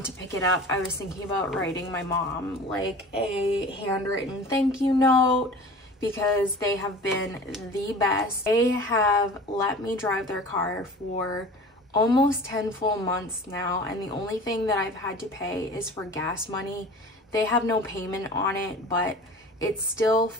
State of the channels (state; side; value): normal; both; correlation 0.40